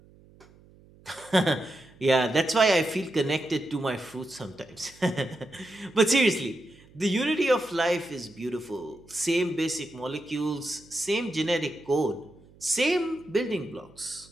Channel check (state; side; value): noise; right; hum, 26 dB below the sound